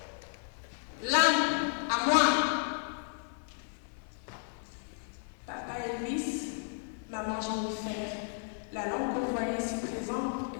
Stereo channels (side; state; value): right; silent; digital silence